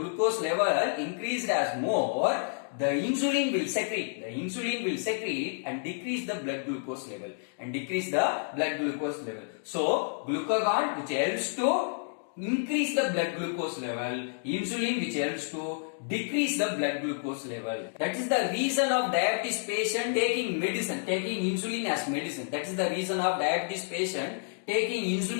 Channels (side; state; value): right; silent; digital silence